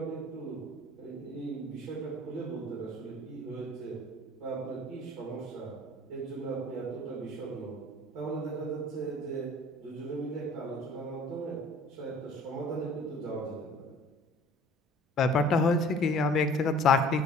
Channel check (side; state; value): both; normal; correlation 0.49